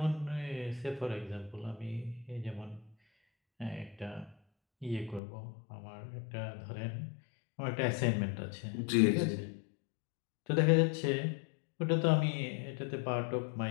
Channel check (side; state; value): right; drops out; at 5.2 s